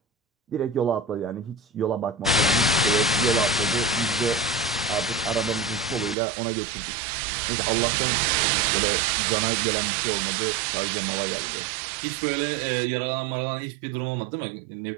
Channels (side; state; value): left; drops out; at 6.2 s